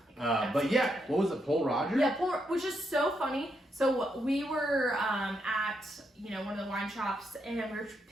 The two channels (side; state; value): both; normal; correlation 0.80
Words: But yeah, what was it, Pol Roger? Yeah, which is so funny. So we were at one of the wine shops, and we were